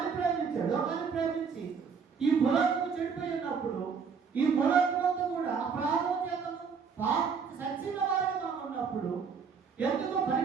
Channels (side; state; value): left; quieter; 6.0 dB